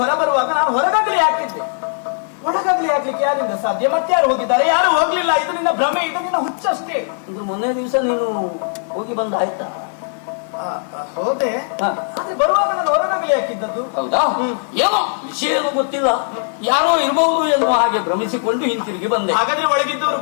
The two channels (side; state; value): right; silent; digital silence